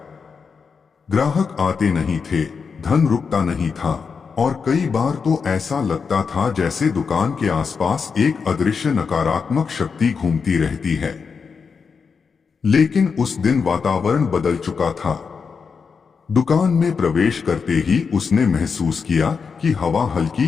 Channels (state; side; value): quieter; right; 5.6 dB